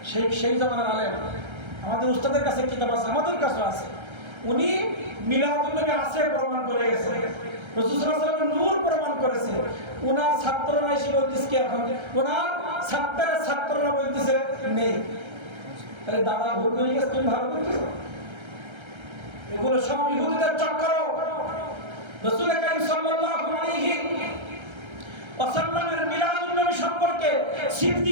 সেই জামানার আলেম। আমাদের উস্তাদের কাছে কিতাব আছে, আমাদের কাছে আছে। উনি মিলাদুন নবী আছে প্রমাণ করে গেছে, রাসূল সাল্লাল্লাহু আলাইহি ওয়াসাল্লামের নূর প্রমাণ করেছে। উনার ছাত্ররা এসে বলতেছে কি এখন উনার ছাত্ররা বলতেছে নেই। তাহলে দাদা ভুল করে গেছে, তুমি ভালো করতেছো। এগুলো সব ইহুদিদের চক্কর। রাসূল কারীম সাল্লাল্লাহু আলাইহি ওয়াসাল্লামের মিলাদুন নবী সম্পর্কে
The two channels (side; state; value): left; late; 1.3 ms